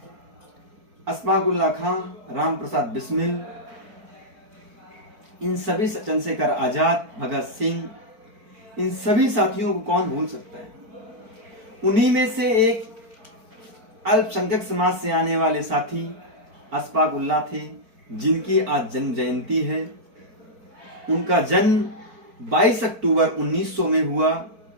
अशफाक उल्लाह खां, राम प्रसाद बिस्मिल, इन सभी चंद्रशेखर आजाद, भगत सिंह, इन सभी साथियों को कौन भूल सकता है। उन्हीं में से एक अल्पसंख्यक समाज से आने वाले साथी अशफाक उल्लाह थे, जिनकी आज जन्म जयंती है। उनका जन्म 22 अक्टूबर 1900 में हुआ,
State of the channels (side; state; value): left; late; 4.5 ms